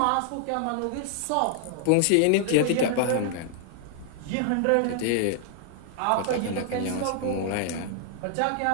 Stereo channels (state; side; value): different; both; correlation 0.00